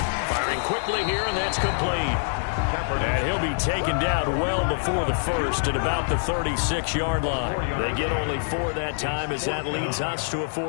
Firing quickly here, and that's complete. And he'll be taken down well before the first at about the 36-yard line. They get only 4 that time as that leads us to a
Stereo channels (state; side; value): silent; right; digital silence